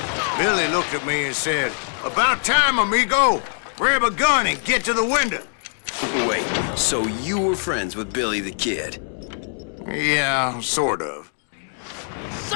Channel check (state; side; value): silent; right; digital silence